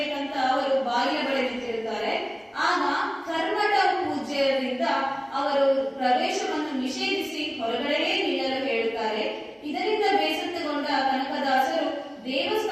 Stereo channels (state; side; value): identical; both; correlation 1.00